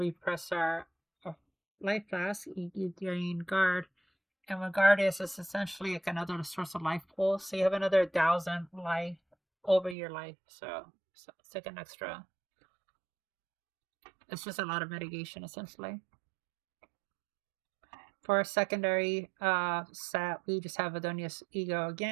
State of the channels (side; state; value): left; drops out; at 10.0 s